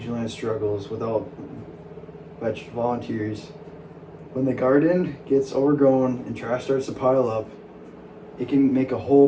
land struggles without volunteers, when the garden gets overgrown and trash starts to pile up, it can make a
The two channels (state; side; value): identical; both; correlation 1.00